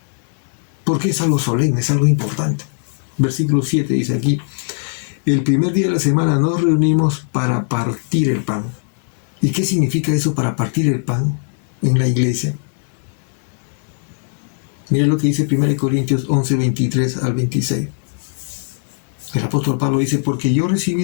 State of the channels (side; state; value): right; silent; digital silence